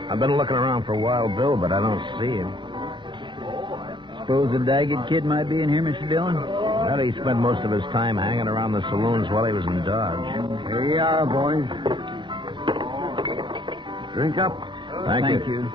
I've been looking around for Wild Bill, but I don't see him. Suppose the Daggett kid might be in here, Mr. Dillon? How did he spend most of his time hanging around the saloons while he was in Dodge? Here you are, boys. Drink up. Thank you.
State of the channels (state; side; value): late; left; 0.23 ms